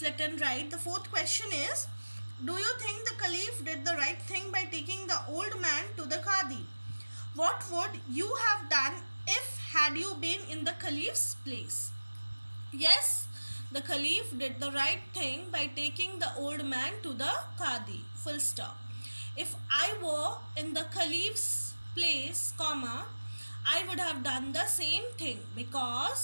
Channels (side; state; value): both; inverted; correlation -1.00